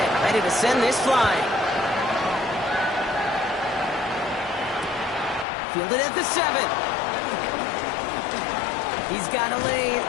ready to send this flying. Fielded at the 7. He's got a lane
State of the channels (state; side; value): drops out; right; at 5.5 s